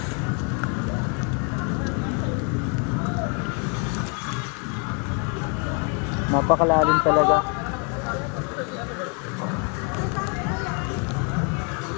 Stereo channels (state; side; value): quieter; right; 35.8 dB